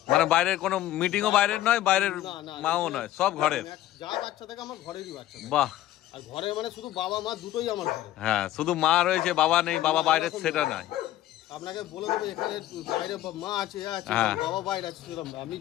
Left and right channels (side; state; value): right; quieter; 14.1 dB